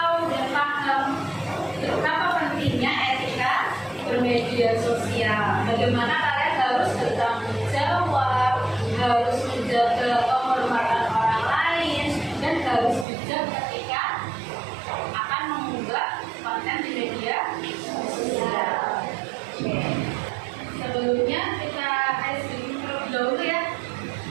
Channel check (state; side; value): drops out; left; at 13.1 s